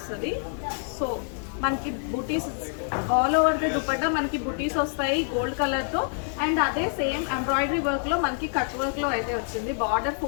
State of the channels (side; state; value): right; silent; 56 dB below the other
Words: సో మనకి బుటీస్ ఆల్ ఓవర్ ది దుపట్టా మనకి బుటీస్ వస్తాయి గోల్డ్ కలర్ తో. అండ్ అదే సేమ్ ఎంబ్రాయిడరీ వర్క్ లో మనకి కట్ వర్క్ లో అయితే వచ్చింది. Border